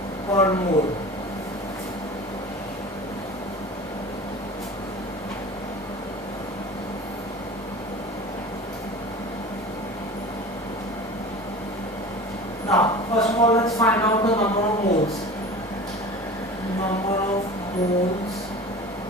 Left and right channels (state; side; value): normal; both; correlation 0.37